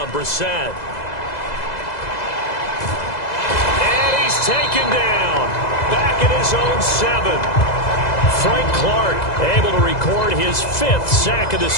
Brissett. And he's taken down. Back at his own 7. Frank Clark able to record his 5th sack of the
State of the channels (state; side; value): late; right; 2.0 ms